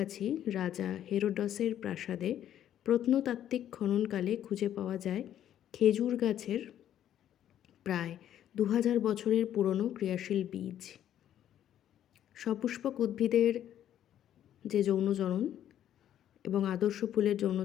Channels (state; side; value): quieter; right; 10.9 dB